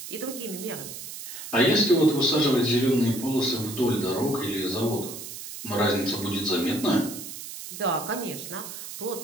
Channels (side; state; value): right; noise; hiss, 10 dB below the sound